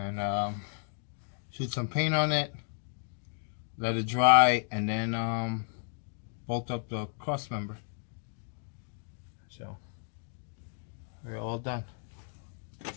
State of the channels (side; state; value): right; silent; 56 dB below the other